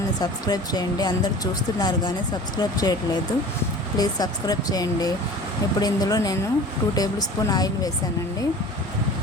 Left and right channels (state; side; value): normal; both; correlation 0.40